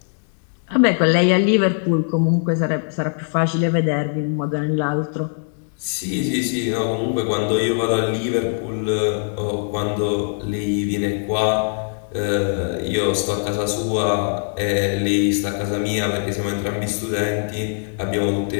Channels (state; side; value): silent; right; digital silence